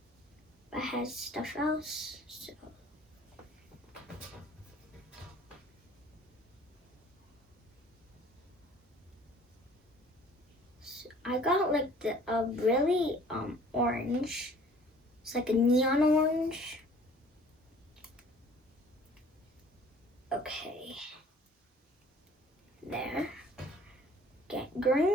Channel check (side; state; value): both; normal; correlation 0.52